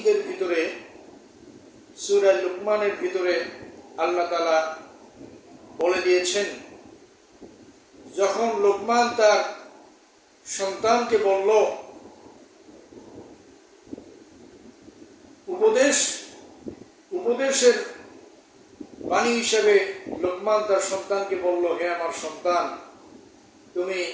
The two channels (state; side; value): identical; both; correlation 1.00